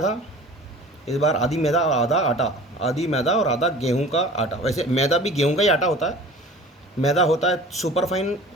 था, इस बार आधी मैदा और आधा आटा, आधी मैदा और आधा गेहूं का आटा। वैसे मैदा भी गेहूं का ही आटा होता है, मैदा होता है सुपर फाइन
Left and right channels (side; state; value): both; normal; correlation 0.43